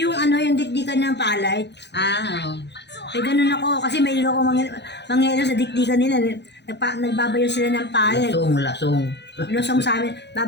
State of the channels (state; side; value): late; right; 0.50 ms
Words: yung dikdikan ng palay. Ganun ako. Kasi may ako mangyayalo sa dikdikan nila. Nagbabayo sila ng palay. Lasong. Lusong sa amin.